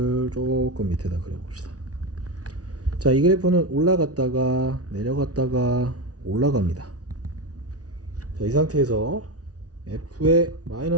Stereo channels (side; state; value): left; late; 0.68 ms